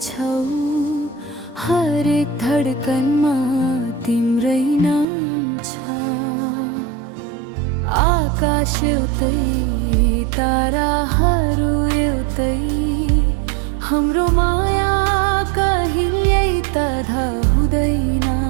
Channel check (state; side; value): drops out; left; at 5.1 s